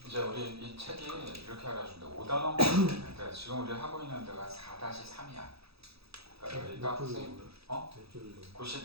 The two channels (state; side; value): late; left; 0.77 ms